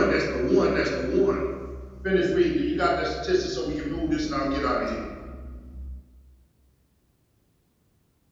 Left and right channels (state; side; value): identical; both; correlation 1.00